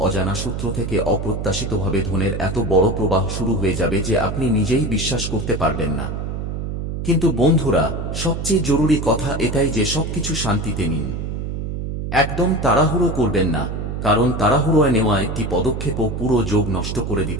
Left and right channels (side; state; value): right; noise; hum, 4 dB below the sound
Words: অজানা সূত্র থেকে অপ্রত্যাশিতভাবে ধনের এত বড় প্রবাহ শুরু হয়ে যাবে যে আপনি নিজেই বিশ্বাস করতে পারবেন না। কিন্তু বন্ধুরা, সবচেয়ে জরুরি কথা এটাই যে সবকিছু শান্তিতে নিন। একদম তাড়াহুড়ো করবেন না, কারণ তাড়াহুড়োয় নেওয়া একটি পদক্ষেপও পুরো যোগ নষ্ট করে